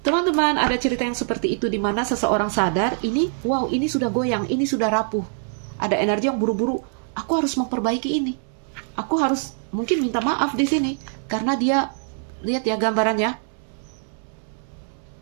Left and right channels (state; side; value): silent; left; 63 dB below the other